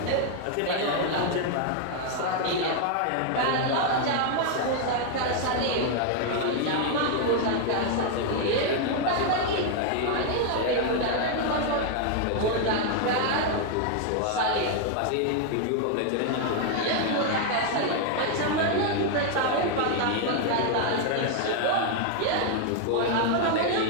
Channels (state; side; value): different; both; correlation 0.00